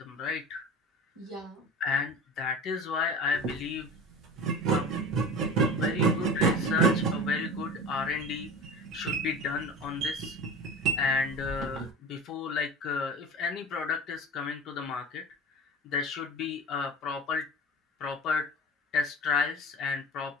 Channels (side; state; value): both; normal; correlation 0.34